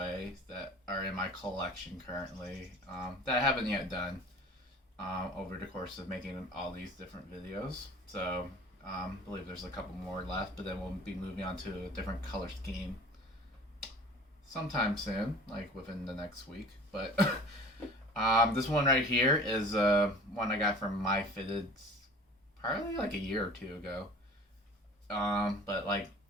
that are in my collection currently that I haven't yet done over the course of making all these different videos. So, I believe there's a couple more left, but then we'll be moving on to a different color scheme sometime soon, like within the next week. But this one right here is one I got from Myfitteds probably like a year or two ago. But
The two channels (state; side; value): normal; both; correlation 0.43